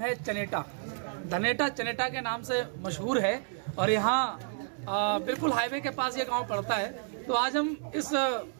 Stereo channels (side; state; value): left; silent; digital silence